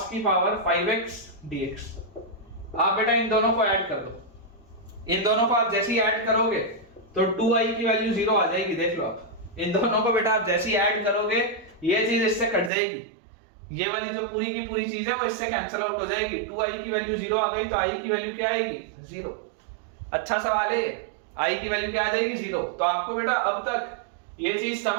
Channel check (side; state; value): left; drops out; at 12.7 s